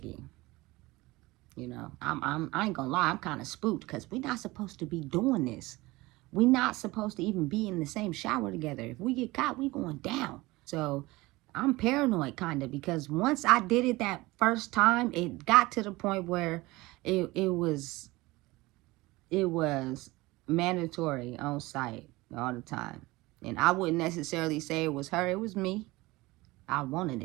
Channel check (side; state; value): left; quieter; 20.8 dB